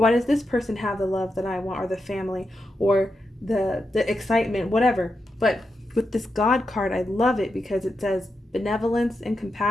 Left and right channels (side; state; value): both; normal; correlation 0.87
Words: why does this person have the love that I want, or the family, or the excitement, whatever. But with this God card, I love it because it says benevolence and